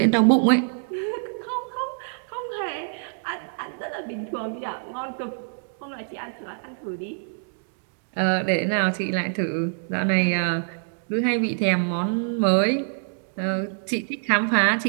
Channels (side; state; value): left; silent; digital silence